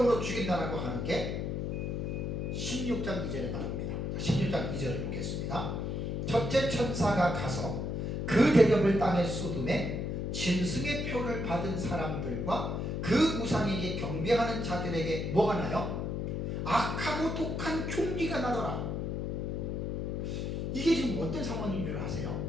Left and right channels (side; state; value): left; noise; hum, 2 dB below the sound